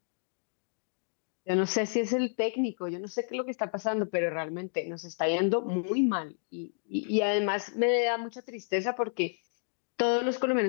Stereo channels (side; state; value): right; silent; digital silence